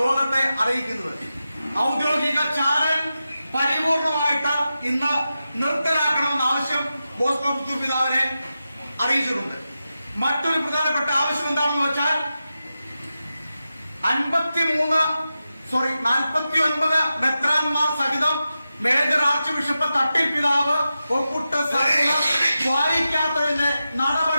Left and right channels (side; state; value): both; inverted; correlation -0.92